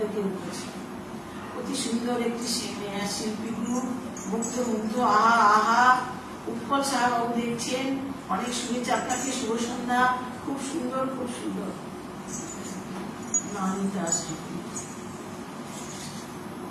উঠেছে। অতি সুন্দর একটি শিল্পী গ্রুপ, মুগ্ধ মুগ্ধ, আহা আহা। উৎপল সাহা বাবু দেখছেন, অনেক শুভেচ্ছা আপনাকে, শুভ সন্ধ্যা, খুব সুন্দর খুব সুন্দর।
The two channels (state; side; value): identical; both; correlation 1.00